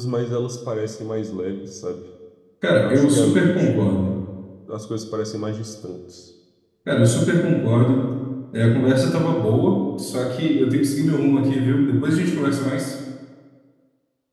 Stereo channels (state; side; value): identical; both; correlation 1.00